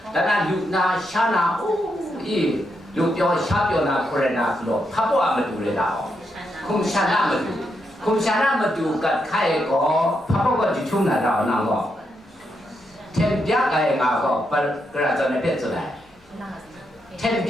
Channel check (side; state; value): both; normal; correlation 0.82